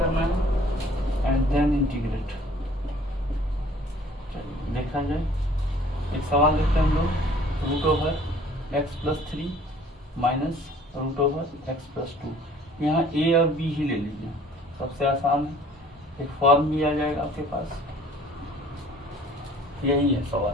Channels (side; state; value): both; normal; correlation 0.53